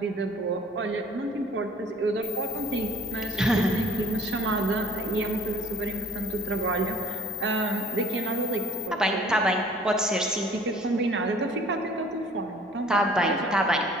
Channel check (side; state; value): both; normal; correlation 0.52